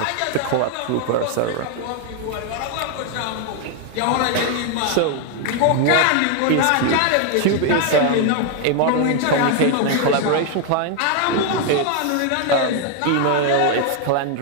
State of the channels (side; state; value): both; different; correlation 0.01